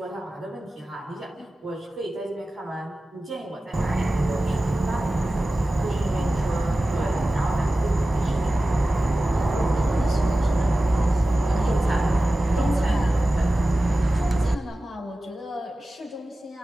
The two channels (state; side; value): normal; both; correlation 0.95